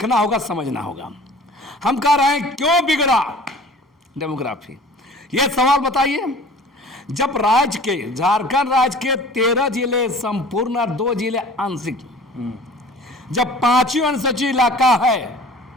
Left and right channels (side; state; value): both; normal; correlation 0.45